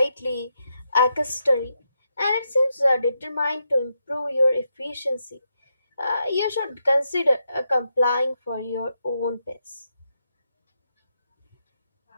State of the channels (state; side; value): inverted; both; correlation -0.83